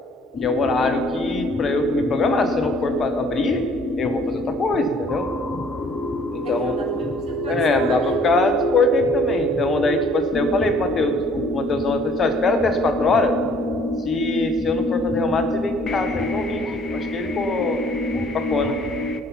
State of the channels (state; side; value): normal; both; correlation 0.58